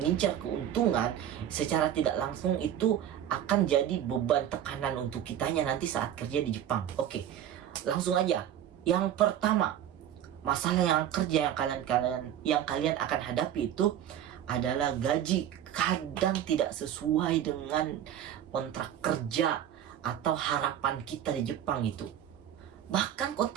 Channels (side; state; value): left; quieter; 10.6 dB